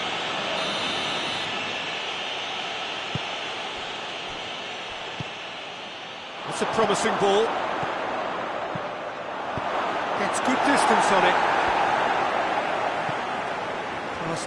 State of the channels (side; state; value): both; identical; correlation 1.00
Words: That's a promising ball. Gets good distance on it. Pass